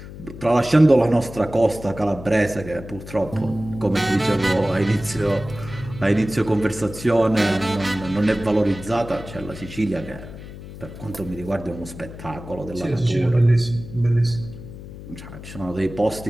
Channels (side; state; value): left; noise; hum, 13 dB below the sound